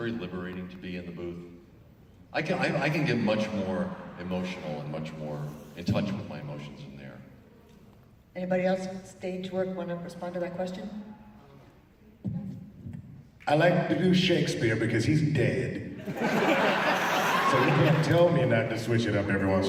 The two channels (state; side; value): identical; both; correlation 1.00